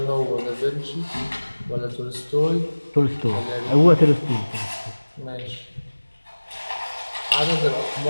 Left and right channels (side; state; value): both; inverted; correlation -1.00